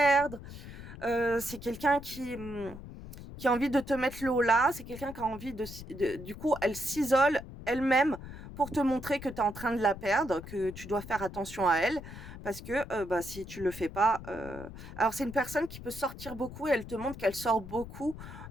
C'est quelqu'un qui a envie de te mettre le haut là, c'est quelqu'un qui a envie du coup, elle s'isole elle-même pour te montrer que tu es en train de la perdre, que tu dois faire attention à elle, parce que bah, si tu le fais pas, alors c'est une personne qui peut sortir beaucoup et elle te montre qu'elle sort beaucoup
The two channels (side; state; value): left; noise; rumble, 13 dB below the sound